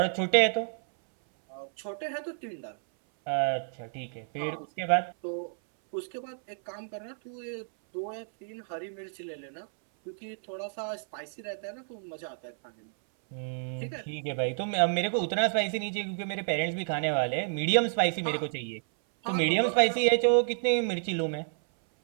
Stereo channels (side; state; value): left; silent; 58 dB below the other